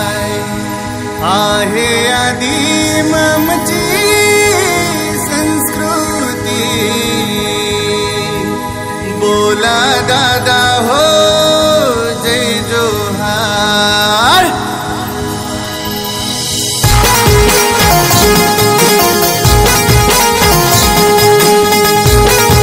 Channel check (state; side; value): identical; both; correlation 1.00